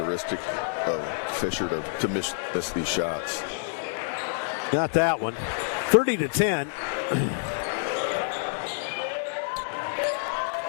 of Fisher to miss these shots. Got that one. 30-10.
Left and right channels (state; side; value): silent; right; digital silence